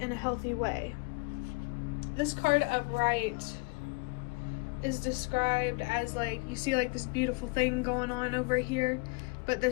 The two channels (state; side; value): quieter; right; 27.6 dB